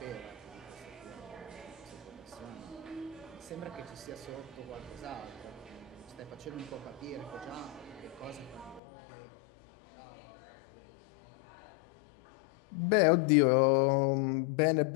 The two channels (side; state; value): right; drops out; at 8.8 s